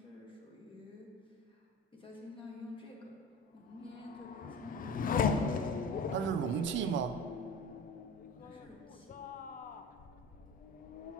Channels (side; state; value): both; normal; correlation 0.35